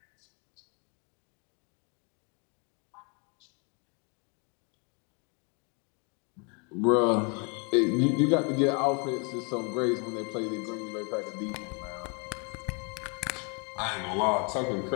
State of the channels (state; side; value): quieter; right; 35.3 dB